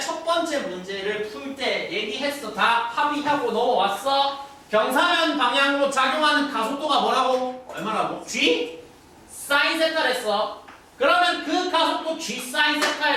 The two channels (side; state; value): both; identical; correlation 1.00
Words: 첫 번째 문제를 풀 때 얘기했어. 다 합의하고 넘어왔어. 경사면 방향으로 작용하는 가속도가 뭐라고? 얼마라고? G? 사인 세타랬어. 그러면 그 가속도 G 사인